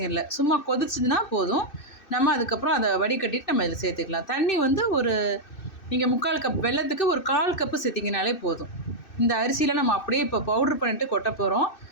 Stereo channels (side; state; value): right; late; 2.6 ms